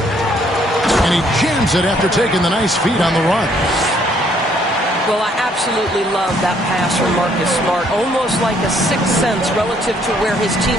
And he jams it after taking the nice feed on the run. Well, I absolutely love that pass from Marcus Smart. Almost like a sixth sense relative to where his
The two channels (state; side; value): normal; both; correlation 0.66